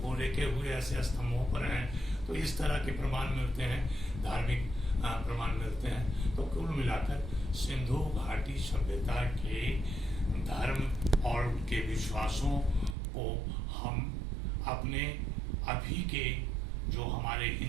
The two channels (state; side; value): drops out; left; at 13.0 s